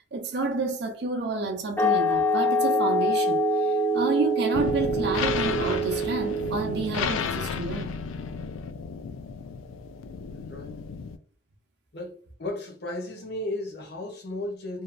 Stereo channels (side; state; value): both; normal; correlation 0.42